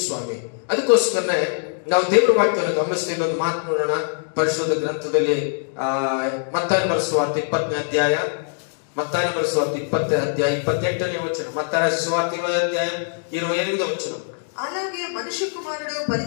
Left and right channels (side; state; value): right; silent; digital silence